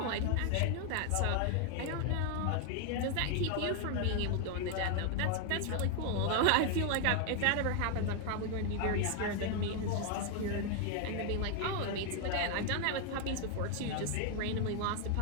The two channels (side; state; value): both; different; correlation 0.00